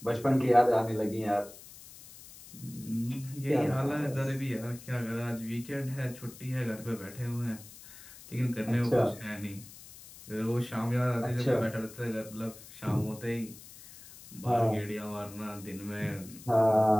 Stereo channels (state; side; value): noise; left; hiss, 18 dB below the sound